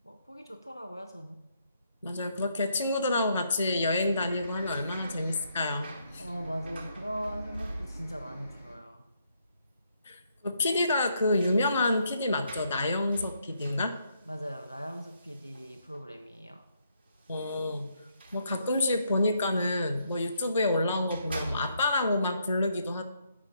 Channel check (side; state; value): both; inverted; correlation -0.74